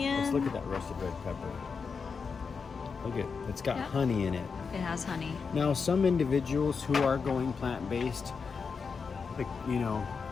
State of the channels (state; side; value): quieter; right; 5.4 dB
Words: Let's look at that roasted red pepper. Look at it's got Yep. honey in it. It has honey. Now, some individuals who are going plant-based, like, you know,